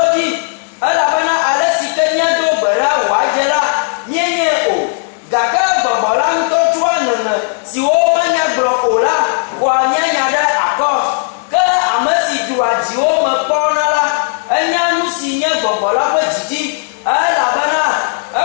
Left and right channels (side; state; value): right; silent; 69 dB below the other